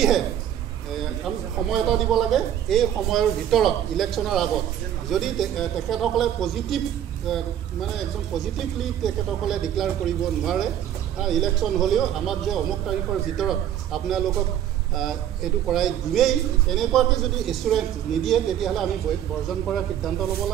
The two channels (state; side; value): quieter; left; 10.6 dB